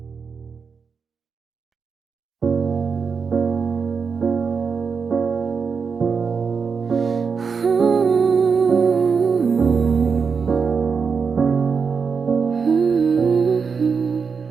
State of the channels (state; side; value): quieter; left; 5.6 dB